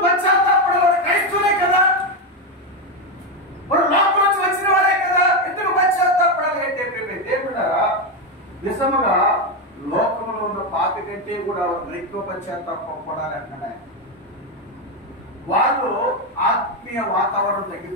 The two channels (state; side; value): normal; both; correlation 0.08